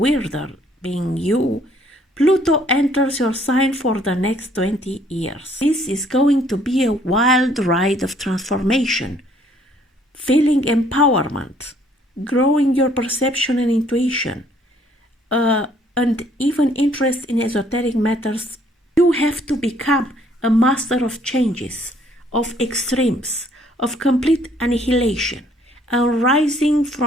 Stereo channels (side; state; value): both; normal; correlation 0.63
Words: being you, Pluto enters your sign for the next 20 years. This is going to be a wild ride of transformation, feeling empowerment, growing your perception and intuition, and even interest in esoteric matters. You have to become a master of changes, of extremes, of complete annihilation, and rising